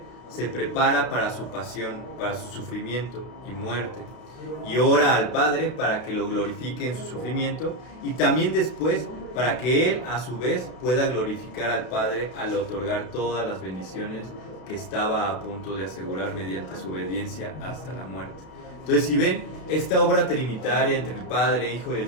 se prepara para su pasión, para su sufrimiento y muerte. Y ora al Padre para que lo glorifique en su sufrimiento, y también después para que Él a su vez pueda glorificar al Padre al otorgar todas las bendiciones que estaba a punto de asegurar mediante su obediencia hasta la muerte. Entonces, si ven, esta obra trinitaria entre el Padre, Hijo y el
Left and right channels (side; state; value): right; late; 32 ms